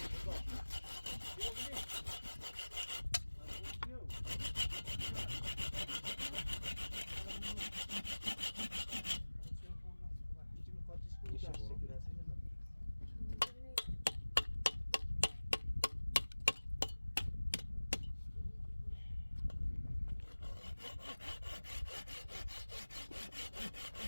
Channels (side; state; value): both; inverted; correlation -1.00